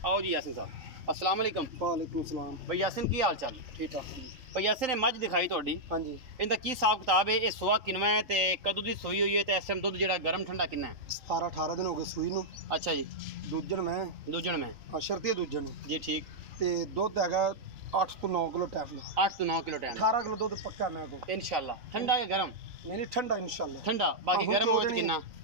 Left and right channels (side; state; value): left; late; 3.9 ms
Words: आओ जी यासिन साहब, अस्सलाम वालेकुम। वालेकुम सलाम। भाई यासिन की हाल चाल? ठीक ठाक। भाई यासिन ने मझ दिखाई तुहाडी, हाँ जी, इनका की हिसाब किताब है? ये सुआ किनवा है ते कदों दी सूई हुई है ते इस टाइम दुध जेड़ा गर्म ठंडा किन्ना है? 17 18 दिन हो गए सूई नूं। अच्छा जी। दूजन में हां, शर्ती दूजन जी, ठीक। ते दुध हैगा 8 तो 9 किलो टाइम। 8 तो 9 किलो टाइम, 18 किलो दुध पक्का मेरे को इंशाल्लाह। ठंडा या गरम? नहीं ठंडा इंशाल्लाह, ठंडा। बाकी गरम हो तो कितना?